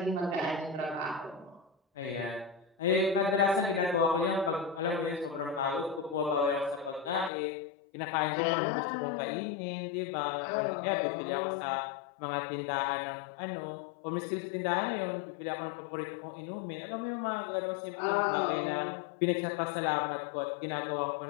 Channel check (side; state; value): right; drops out; at 7.3 s